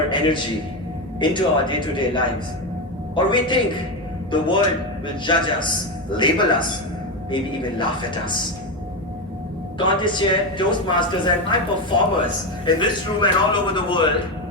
energy into our day-to-day lives? Or we think the world will judge us, label us, maybe even laugh at us. Contest Chair, Toastmasters, and my performers in this room and all over the world,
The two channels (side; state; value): both; normal; correlation 0.13